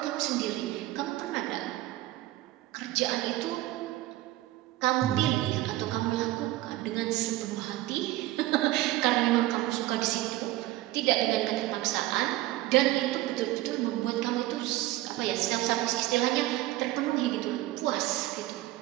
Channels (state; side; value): quieter; left; 16.8 dB